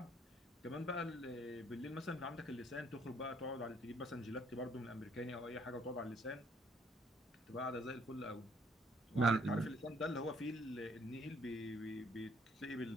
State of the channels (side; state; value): both; normal; correlation 0.64